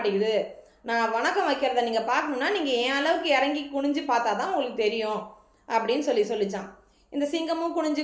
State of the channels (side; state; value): both; identical; correlation 1.00